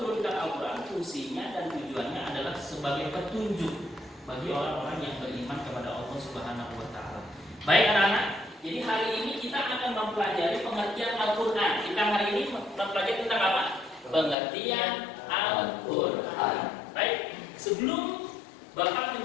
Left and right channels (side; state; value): right; drops out; at 14.4 s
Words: Al-Quran, fungsinya dan tujuannya adalah sebagai petunjuk bagi orang-orang yang beriman kepada Allah Subhanahu wa Ta'ala. Baik anak-anak, jadi hari ini kita akan mempelajari pengertian Al-Quran. Kita hari ini mempelajari tentang apa? Pengertian Al-Quran. Baik, sebelum Bapak